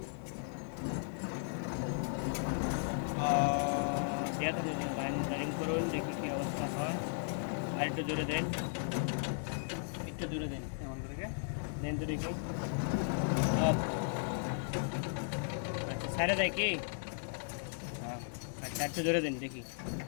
লাইন করুন, দেখি কি অবস্থা হয়। আর একটু জোরে দেন, একটু জোরে দেন, এমন করে দেন তো দেখি। আচ্ছা, সাইডে দেয় কি? আচ্ছা, একটু জোরে দেন দেখি।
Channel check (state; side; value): silent; right; digital silence